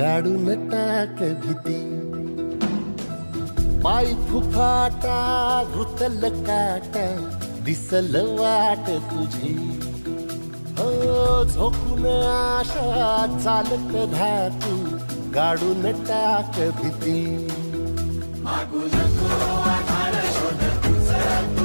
टाक भीती पाय फुफाटा रुतल काटा दिसल वाट तुझी हो झोकून आशा चालत राहतू गाडून टाक भीती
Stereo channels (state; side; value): inverted; both; correlation -1.00